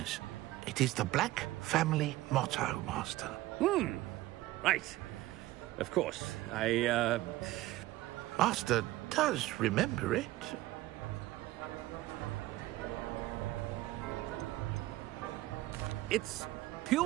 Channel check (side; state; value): left; quieter; 17.0 dB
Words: It is the Black family motto, Master. Right. Of course. Master does remember it. It's